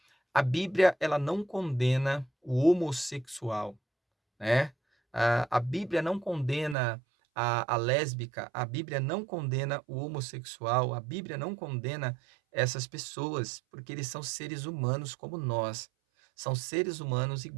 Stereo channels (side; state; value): left; drops out; at 6.8 s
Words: A Bíblia, ela não condena o homossexual, né? A Bíblia não condena a lésbica, a Bíblia não condena o homossexual, a Bíblia não condena essas pessoas, porque eles são seres humanos como nós, são seres humanos